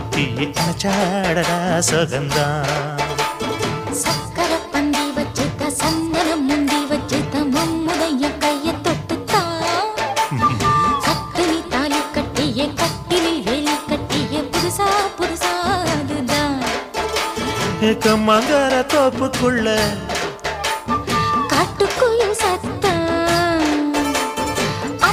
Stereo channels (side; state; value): both; identical; correlation 1.00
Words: அச்சாடடா சொகந்தான் சக்கர பந்தி வச்சுட்ட சந்தனம் முந்தி வச்சுட்ட மம்முடைய கைய தொட்டுத்தான் கட்டினி தாலி கட்டிய கட்டிலில் வேலி கட்டிய புதுசா புதுசா அதுதான் கம்மாங்கர தோப்புக்குள்ள காட்டுக்குயில் சத்தம்